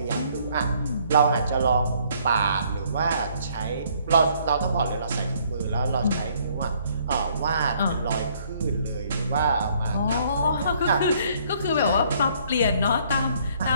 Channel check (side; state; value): both; inverted; correlation -0.63